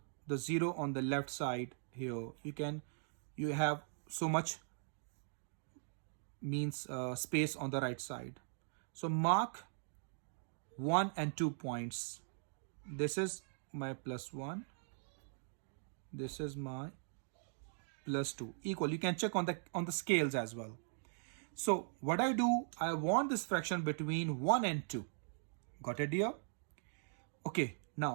the 0 on the left side here. You have so much means space on the right side. So mark 1 and 2 points. This is my +1. This is my +2. Equal. You can check on the scales as well. So what I do, I want this fraction between 1 and 2. Got it here? Okay.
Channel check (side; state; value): left; silent; digital silence